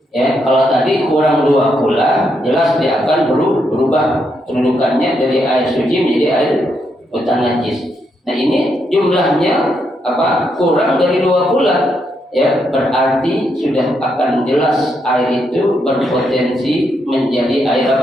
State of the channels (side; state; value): both; normal; correlation 0.79